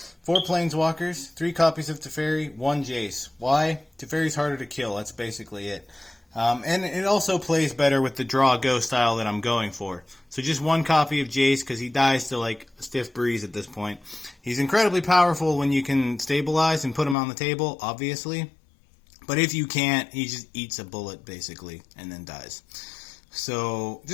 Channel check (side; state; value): right; drops out; at 17.2 s